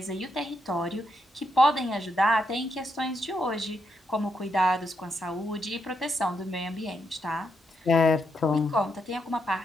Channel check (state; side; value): normal; both; correlation 0.80